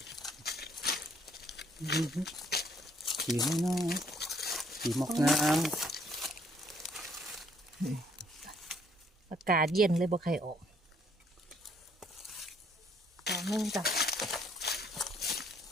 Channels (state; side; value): normal; both; correlation 0.66